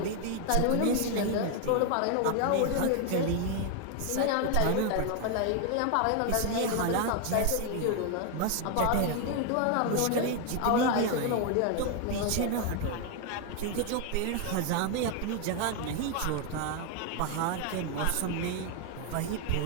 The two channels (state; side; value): different; both; correlation 0.01